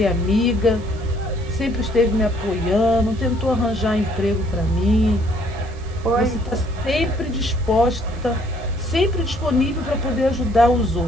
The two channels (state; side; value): noise; right; hiss, 26 dB below the sound